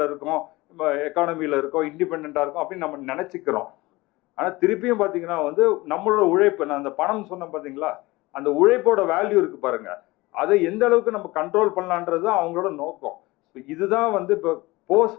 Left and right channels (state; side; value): quieter; right; 21.1 dB